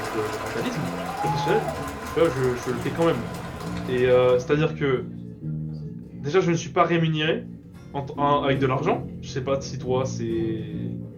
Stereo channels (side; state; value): both; identical; correlation 1.00